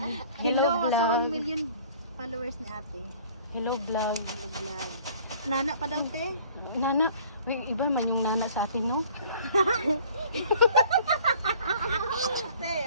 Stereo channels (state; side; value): inverted; both; correlation -0.52